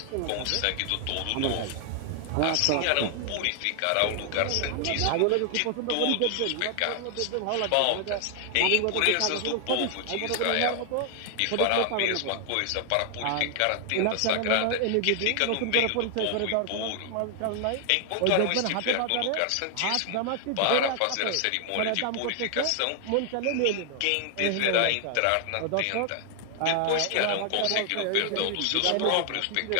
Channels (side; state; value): both; different; correlation 0.00